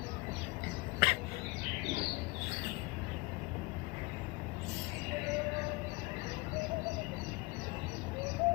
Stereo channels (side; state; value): right; quieter; 25.7 dB